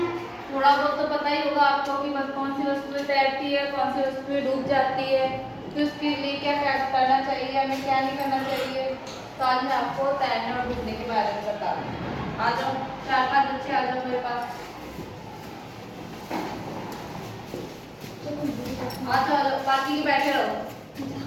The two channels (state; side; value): identical; both; correlation 1.00